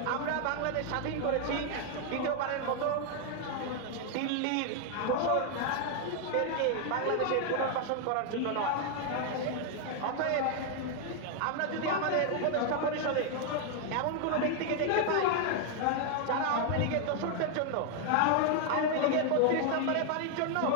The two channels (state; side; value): different; both; correlation 0.00